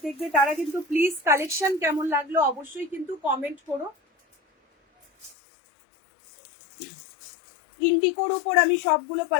দেখবে তারা কিন্তু প্লিজ কালেকশন কেমন লাগলো অবশ্যই কিন্তু কমেন্ট করো। ইন্ডিকোর উপর আমি সবগুলো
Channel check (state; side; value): drops out; right; at 5.4 s